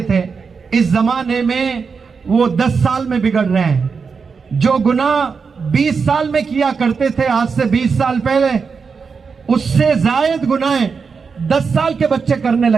थे, इस जमाने में वो 10 साल में बिगड़ रहे हैं। जो गुनाह 20 साल में किया करते थे आज से 20 साल पहले, उससे जायद गुनाह 10 साल के बच्चे करने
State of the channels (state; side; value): quieter; left; 5.4 dB